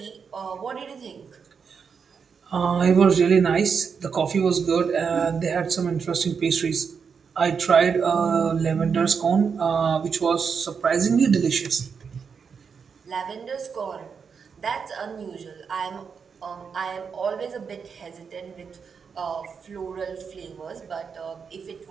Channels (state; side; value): quieter; left; 6.1 dB